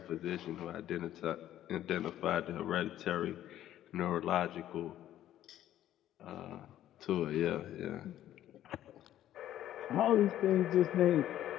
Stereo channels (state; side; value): quieter; right; 12.4 dB